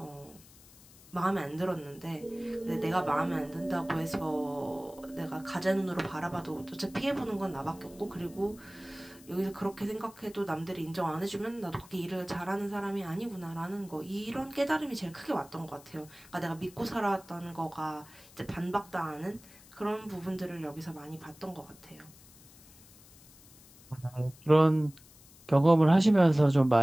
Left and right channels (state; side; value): noise; left; hiss, 23 dB below the sound